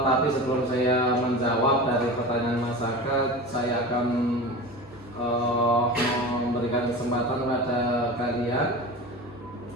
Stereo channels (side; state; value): both; normal; correlation 0.31